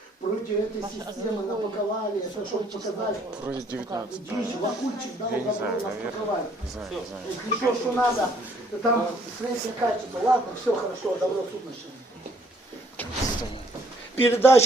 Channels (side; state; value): both; normal; correlation 0.64